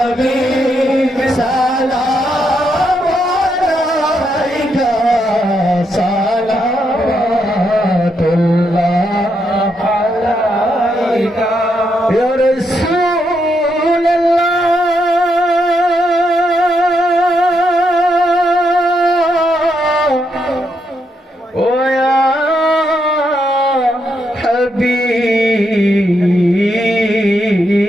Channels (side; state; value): both; normal; correlation 0.79